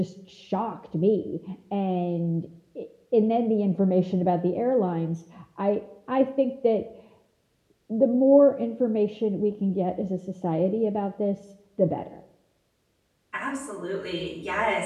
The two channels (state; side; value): identical; both; correlation 1.00